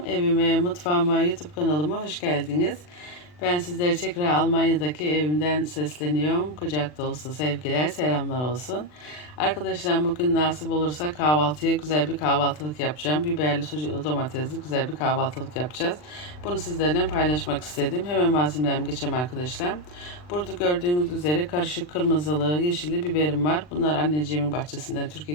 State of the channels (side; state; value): right; late; 40 ms